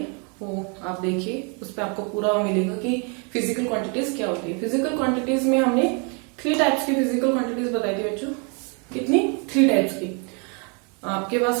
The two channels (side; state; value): left; quieter; 35.8 dB